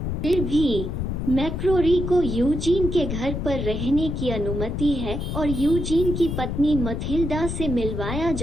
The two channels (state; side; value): noise; left; rumble, 3 dB below the sound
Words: फिर भी मैक्रोरी को यूजीन के घर पर रहने की अनुमति है और यूजीन की पत्नी मथिल्डा से मिलवाया